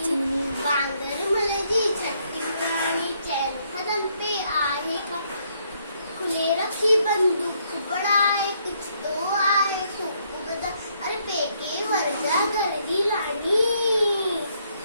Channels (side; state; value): both; inverted; correlation -0.72